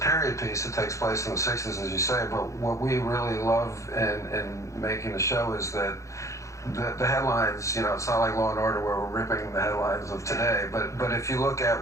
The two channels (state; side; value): late; right; 0.15 ms